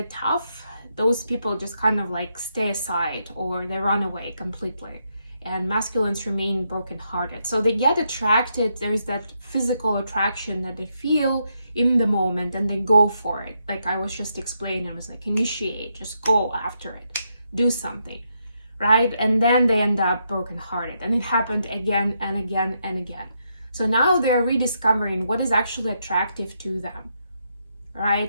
tough, those people just kind of like stay aside, or they run away completely, and masculines remain brokenhearted. So they get attracted. There's that physical attraction that they feel in the moment, and they go for it. Like I was just explaining, I was like, initiate, just go after it, do something, right? And then they end up brokenhearted, and it happened again and again and again. So now they're rediscovering what is actually attractive to them,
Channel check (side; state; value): both; inverted; correlation -0.80